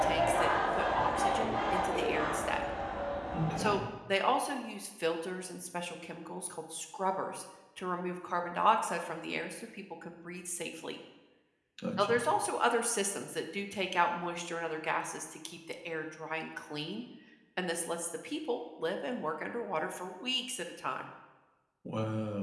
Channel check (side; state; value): both; identical; correlation 1.00